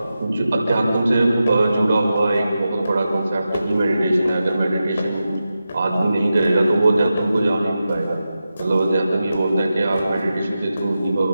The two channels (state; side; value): inverted; both; correlation -0.91